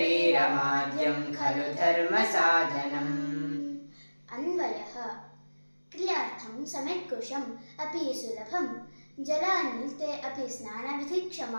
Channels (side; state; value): both; inverted; correlation -1.00